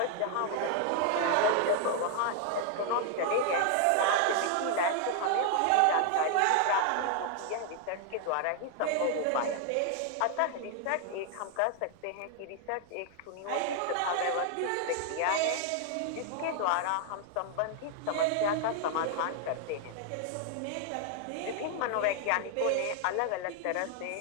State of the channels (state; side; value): different; both; correlation 0.00